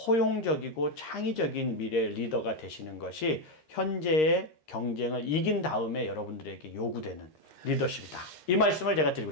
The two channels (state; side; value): late; right; 13 ms